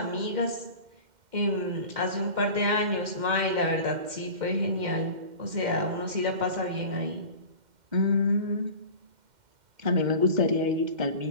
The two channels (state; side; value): late; left; 2.1 ms